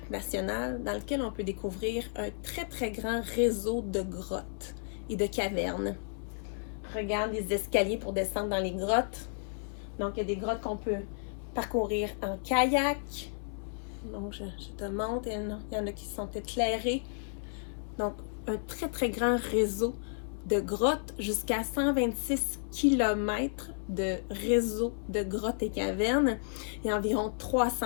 national dans lequel on peut découvrir un très, très grand réseau de grottes et de cavernes. Regarde les escaliers pour descendre dans les grottes. Donc, il y a des grottes qu'on peut parcourir en kayak. Donc, je te montre, il y en a qui sont éclairées. Donc, un très, très grand réseau de grottes, jusqu'à 126 km de réseau de grottes et cavernes. Il y a environ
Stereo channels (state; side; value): silent; right; 56 dB below the other